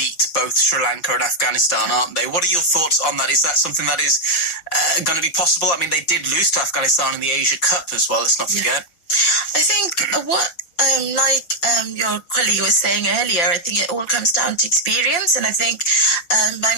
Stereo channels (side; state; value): right; late; 5.8 ms